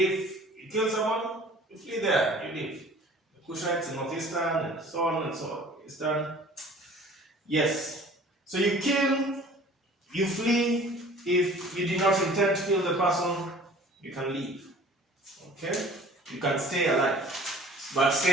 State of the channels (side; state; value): both; normal; correlation 0.48